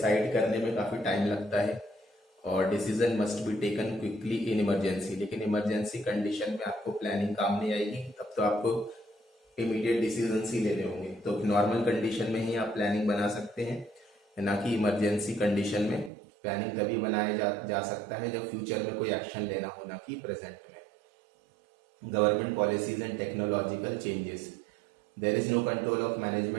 करने में काफी टाइम लगता है और decision must be taken quickly in emergency. लेकिन इमरजेंसी कंडीशन में आपको प्लानिंग काम नहीं आएगी, तब तो आपको इमीडिएट डिसीजन ही लेने होंगे। तो नॉर्मल कंडीशन में ही आप प्लानिंग बना सकते हैं, ना कि इमरजेंसी कंडीशन में। प्लानिंग तभी बनाया जा सकता है जब फ्यूचर में कोई एक्शन लेना हो, ना कि प्रेजेंट में। Government policies and technological changes. There is no control of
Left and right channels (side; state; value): left; drops out; at 16.1 s